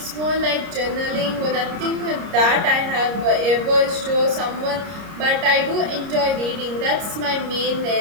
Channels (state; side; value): late; left; 30 ms